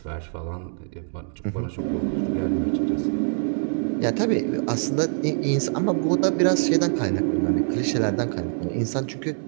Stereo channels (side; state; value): left; silent; 56 dB below the other